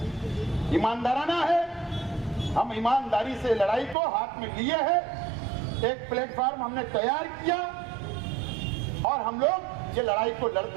ईमानदाराना है, हम ईमानदारी से लड़ाई को हाथ में लिए हैं। एक प्लेटफॉर्म हमने तैयार किया और हम लोग ये लड़ाई को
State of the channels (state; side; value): drops out; left; at 4.0 s